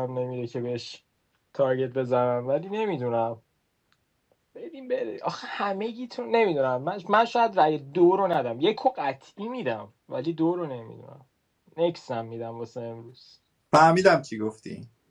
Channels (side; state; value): both; identical; correlation 1.00